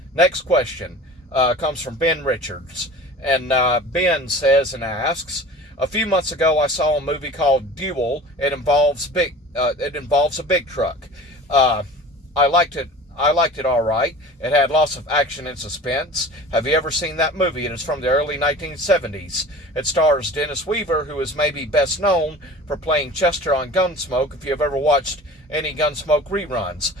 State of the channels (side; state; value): both; normal; correlation 0.40